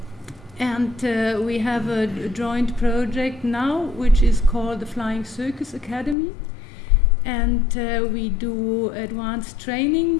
we have a joint project now which is called the Flying Circus Academy, and we do advanced training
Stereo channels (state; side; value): drops out; right; at 6.2 s